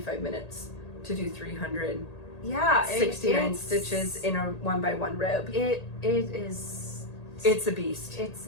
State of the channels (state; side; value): late; right; 1.8 ms